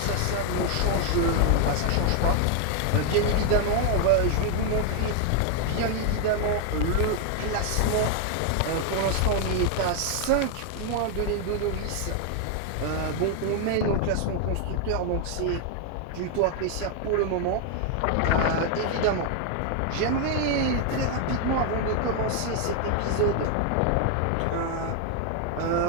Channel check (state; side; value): different; both; correlation 0.00